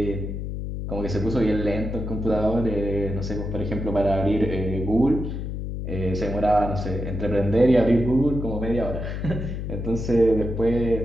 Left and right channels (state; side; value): noise; left; hum, 5 dB below the sound